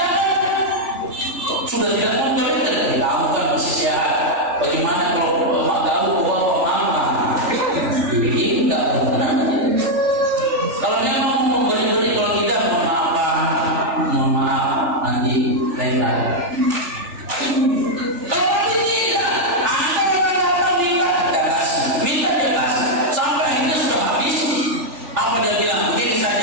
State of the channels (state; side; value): late; left; 3.4 ms